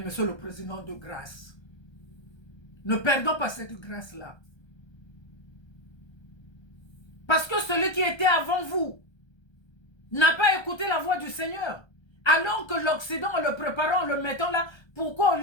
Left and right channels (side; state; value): right; late; 1.3 ms